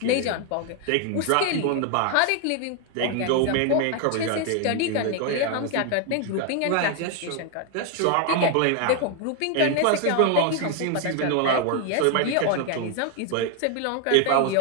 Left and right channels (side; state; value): both; different; correlation 0.01